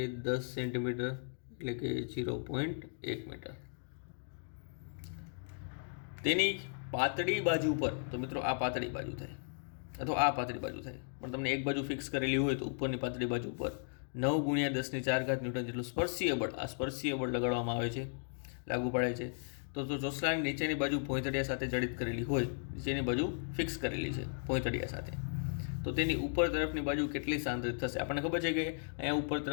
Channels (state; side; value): silent; right; digital silence